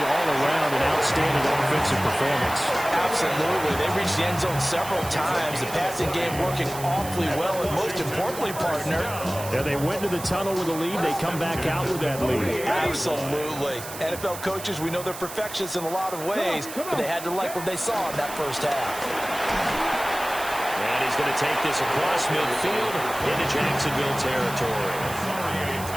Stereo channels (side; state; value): right; noise; hiss, 11 dB below the sound